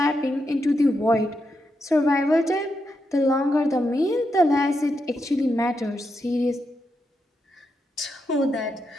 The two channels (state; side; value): normal; both; correlation 0.84